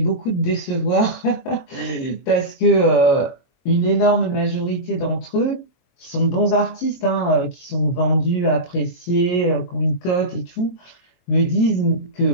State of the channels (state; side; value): late; right; 22 ms